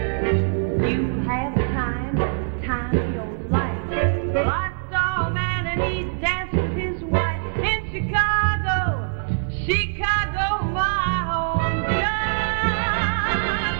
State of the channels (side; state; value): left; silent; 63 dB below the other